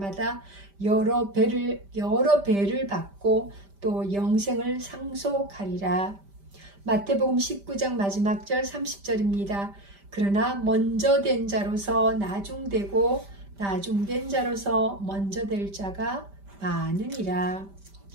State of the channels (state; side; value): late; left; 5.1 ms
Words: 여러 배를 받고 또 영생을 상속하리라. 마태복음 19장 마지막 절 30절입니다. 그러나 먼저 된 자로서 나중되고 나중된 자로서 먼저 될 자가 많으니라.